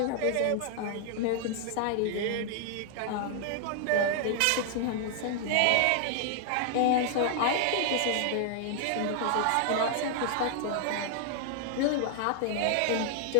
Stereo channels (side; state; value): both; different; correlation -0.01